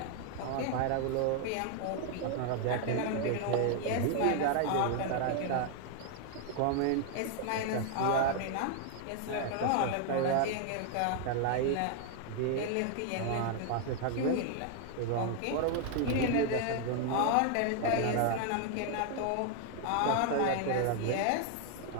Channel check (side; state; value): both; different; correlation 0.00